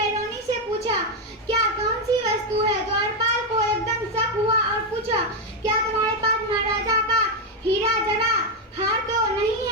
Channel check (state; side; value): normal; both; correlation 0.04